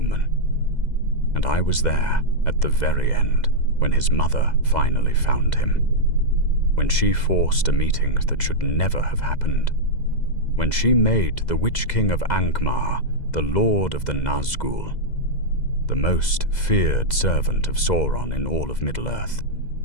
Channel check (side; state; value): right; late; 2.0 ms